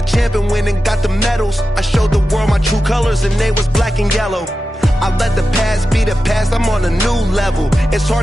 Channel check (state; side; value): normal; both; correlation 0.92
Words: champion, went and got the medals. I showed the world my true colors and they was black and yellow. I let the past be the past, I'm on a new level. It's